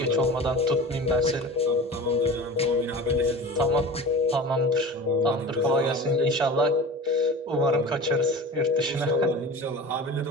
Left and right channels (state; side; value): normal; both; correlation 0.35